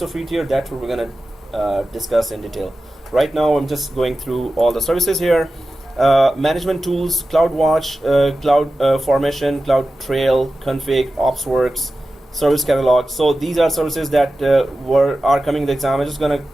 free tier? That's what we're going to discuss in detail. Right now, I'm just going through all the services here. Management tools, CloudWatch, Cloud Formation, Cloud Trail, Config, OpsWorks, Service Catalog. So these are services that are coming in the exam. I'm just going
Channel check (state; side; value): normal; both; correlation 0.94